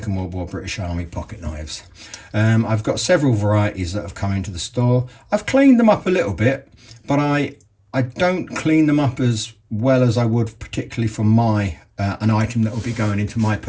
World War British Army pocket knives. I've got several varieties that have come into the store. I've cleaned them up a little bit, but I don't clean them up as well as I would particularly for my an item that will be going into my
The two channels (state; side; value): identical; both; correlation 1.00